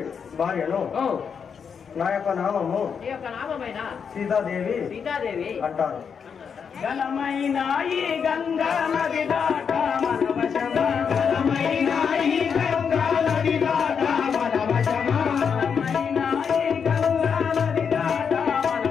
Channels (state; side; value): quieter; right; 6.6 dB